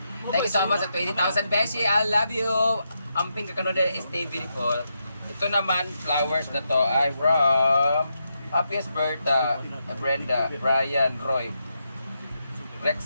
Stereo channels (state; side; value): inverted; both; correlation -0.83